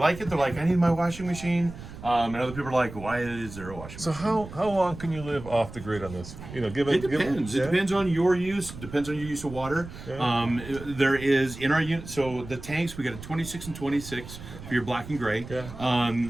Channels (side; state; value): right; noise; rumble, 13 dB below the sound